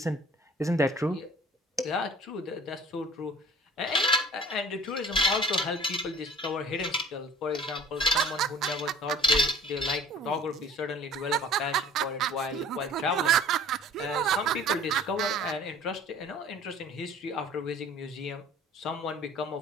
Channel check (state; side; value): normal; both; correlation 0.48